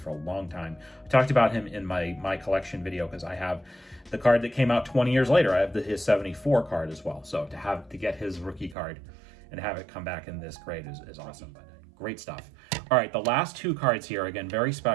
a long time. I talked about him in my collection video because I have the card that came out 20 years later. I have his 74 card as well. So to get his rookie card and have it come back in this grade is awesome. But great stuff. All right, the last two cards here, again, very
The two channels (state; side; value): drops out; left; at 8.8 s